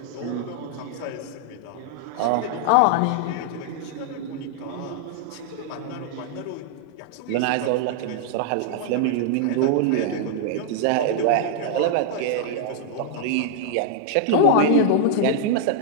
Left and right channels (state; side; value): different; both; correlation -0.01